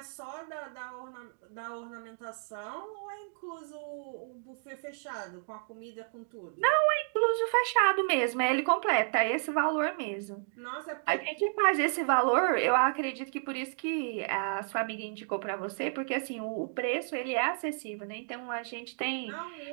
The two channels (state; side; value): silent; left; digital silence